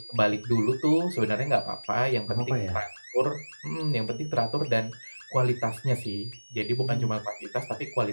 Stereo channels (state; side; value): inverted; both; correlation -1.00